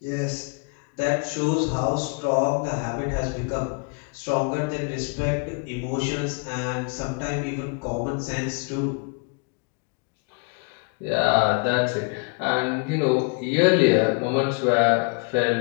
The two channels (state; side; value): quieter; right; 34.4 dB